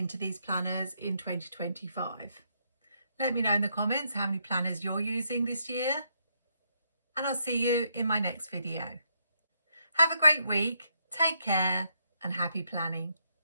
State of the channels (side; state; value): both; inverted; correlation -0.76